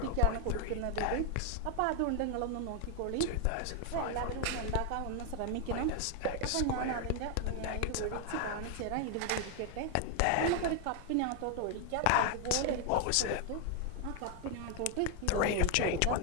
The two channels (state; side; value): different; both; correlation 0.01